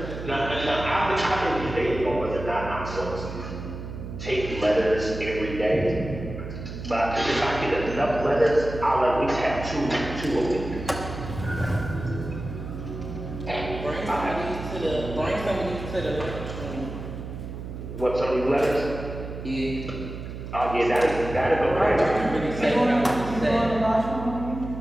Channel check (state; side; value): noise; right; hum, 9 dB below the sound